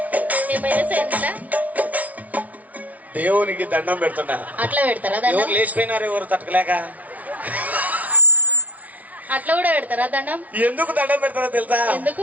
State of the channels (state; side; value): late; left; 0.071 ms